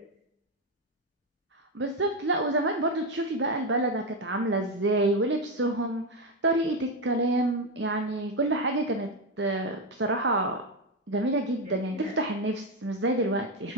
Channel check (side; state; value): both; normal; correlation 0.09